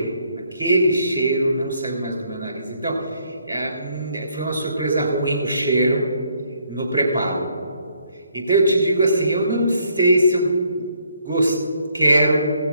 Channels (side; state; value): both; inverted; correlation -0.69